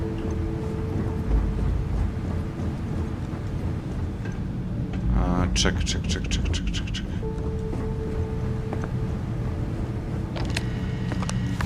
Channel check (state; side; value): identical; both; correlation 1.00